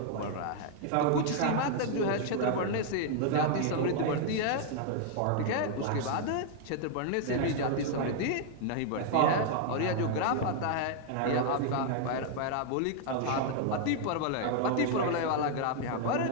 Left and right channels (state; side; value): different; both; correlation 0.00